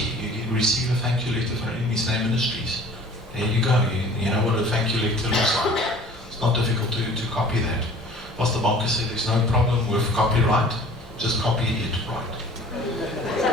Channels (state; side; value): normal; both; correlation 0.47